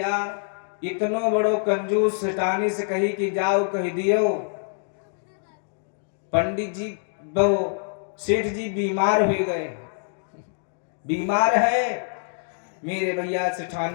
इतनो बड़ो कंजूस सेठानी से कही कि जाओ कह दियो पंडित जी वो सेठ जी बीमार हो गए, बीमार है। मेरे भैया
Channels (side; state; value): right; silent; digital silence